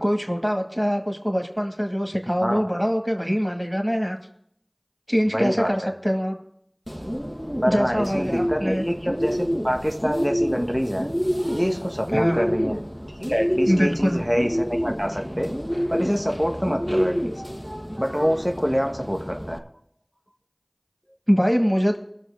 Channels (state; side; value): identical; both; correlation 1.00